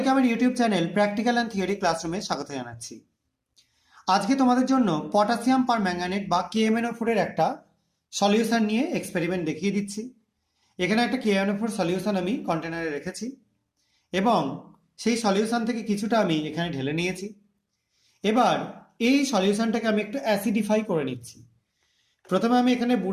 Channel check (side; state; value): both; identical; correlation 1.00